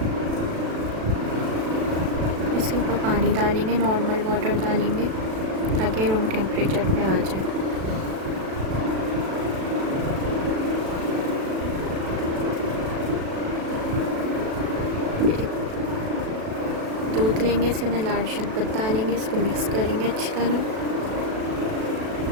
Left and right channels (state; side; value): late; left; 37 ms